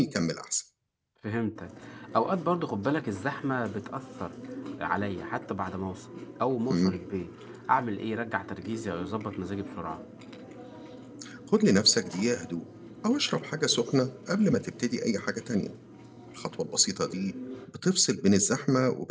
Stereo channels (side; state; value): both; identical; correlation 1.00